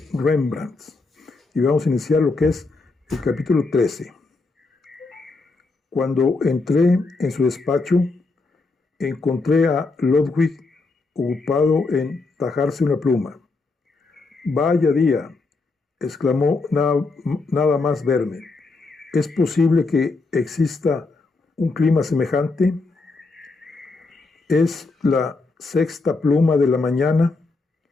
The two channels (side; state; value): right; quieter; 3.7 dB